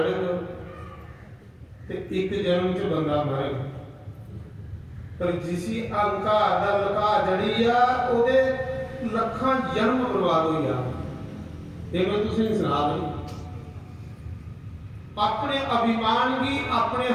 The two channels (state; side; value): identical; both; correlation 1.00